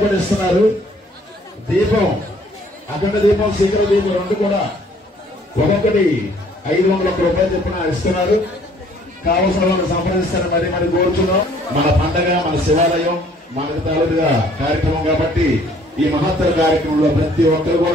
కూడా ఇస్తున్నారు. దీపం అఖండ దీపం శిఖర దీపం 2 కూడా ఒక్కొక్కటి 501 రూపాయలు చెప్పిన ఇస్తున్నారు. కావలసిన వాళ్ళు సంప్రదిస్తారని మరి కోరుతున్నాం. మన పండగ, మన శివాలయం, మనకు తాలూకుగా కార్యక్రమం కాబట్టి ఈ మహత్తర కార్యక్రమంలో ప్రతి ఒక్కరు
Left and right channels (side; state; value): both; normal; correlation 0.59